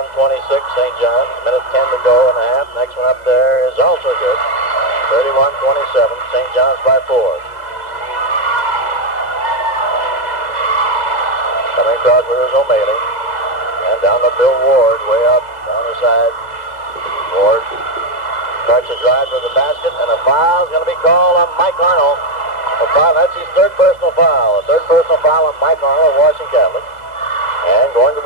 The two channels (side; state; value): right; late; 2.0 ms